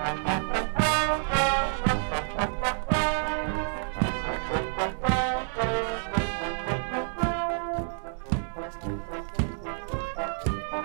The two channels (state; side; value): silent; left; digital silence